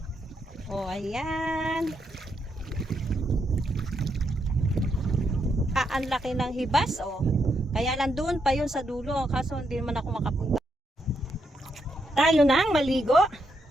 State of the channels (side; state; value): both; normal; correlation 0.80